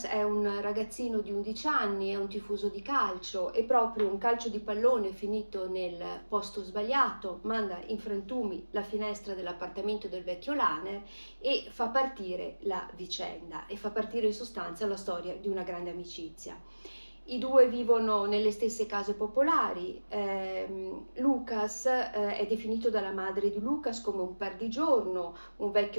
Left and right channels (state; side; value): inverted; both; correlation -1.00